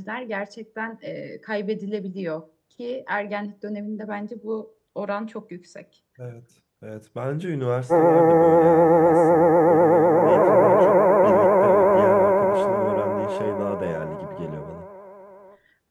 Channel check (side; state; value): both; identical; correlation 1.00